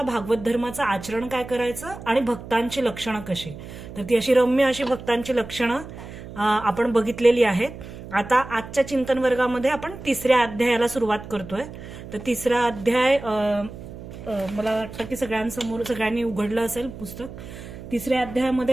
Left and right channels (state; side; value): noise; right; hum, 13 dB below the sound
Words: भागवत धर्माचं आचरण काय करायचं आणि भक्तांची लक्षणं कशी. तर ती अशी रम्य अशी भक्तांची लक्षणं आपण बघितलेली आहेत. आता आजच्या चिंतन वर्गामध्ये आपण तिसऱ्या अध्यायाला सुरुवात करतोय. तर तिसरा अध्याय मला वाटतं की सगळ्यांनी उघडलं असेल पुस्तक. तिसऱ्या अध्यायामध्ये